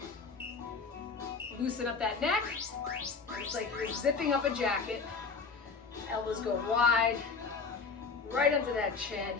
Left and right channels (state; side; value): quieter; right; 4.9 dB